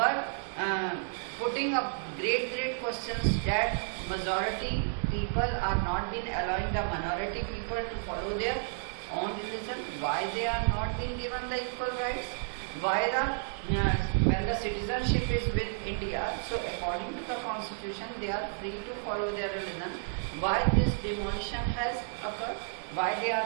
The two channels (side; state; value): left; silent; digital silence